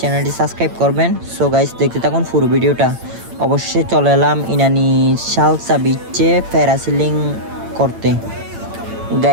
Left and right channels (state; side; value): late; left; 8.9 ms